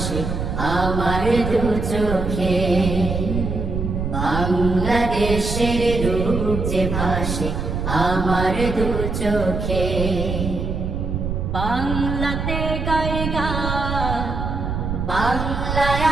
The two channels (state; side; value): noise; right; rumble, 3 dB below the sound